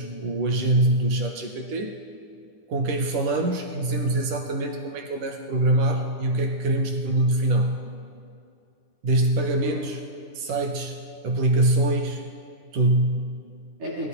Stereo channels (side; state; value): left; late; 9.9 ms